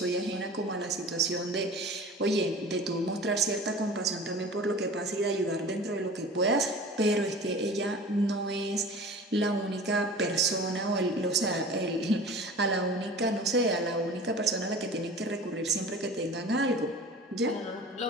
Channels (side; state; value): both; normal; correlation 0.39